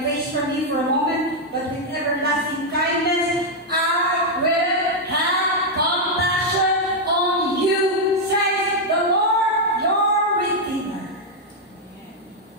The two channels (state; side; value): normal; both; correlation -0.01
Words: face from you for a moment, but with everlasting kindness, I will have compassion on you, says the Lord, your Redeemer.